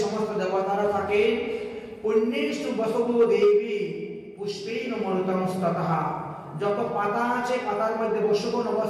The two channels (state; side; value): identical; both; correlation 1.00